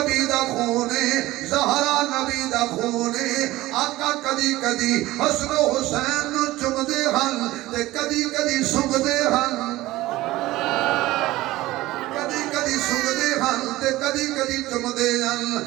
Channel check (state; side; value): quieter; left; 17.5 dB